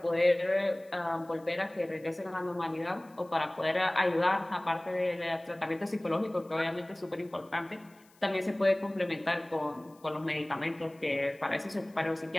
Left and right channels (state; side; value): noise; left; hiss, 30 dB below the sound